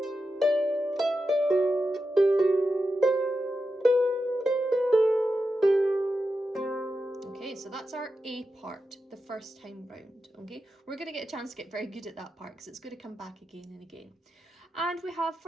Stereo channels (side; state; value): both; normal; correlation 0.89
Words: Okay, so that's our A part, the first time round, okay? We're going to get a chance to get very good at that part because it's going to come back again and again. And we have,